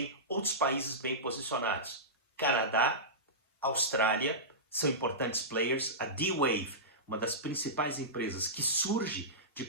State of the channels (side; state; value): both; normal; correlation -0.17